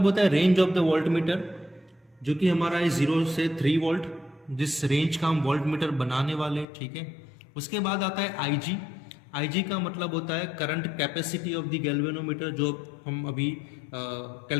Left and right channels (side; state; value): right; drops out; at 6.7 s